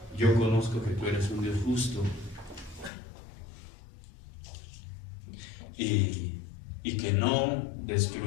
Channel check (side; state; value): right; drops out; at 2.9 s